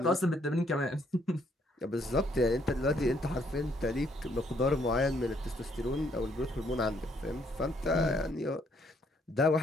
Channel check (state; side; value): normal; both; correlation 0.69